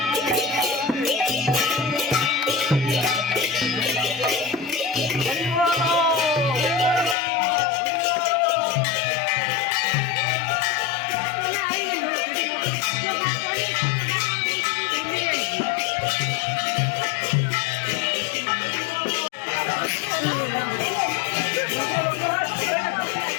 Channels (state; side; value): drops out; right; at 7.2 s